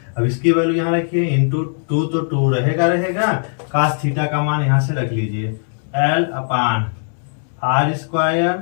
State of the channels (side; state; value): right; silent; digital silence